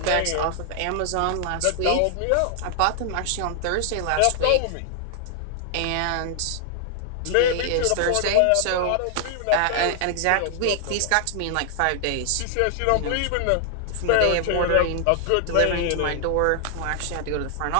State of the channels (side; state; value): both; different; correlation 0.00